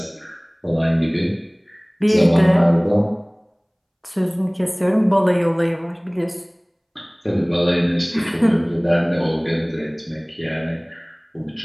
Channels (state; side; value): identical; both; correlation 1.00